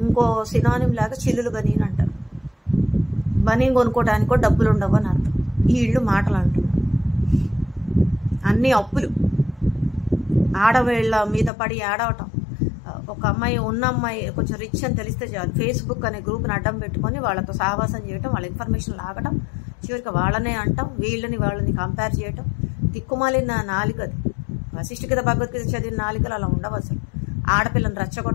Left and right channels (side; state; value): right; drops out; at 11.5 s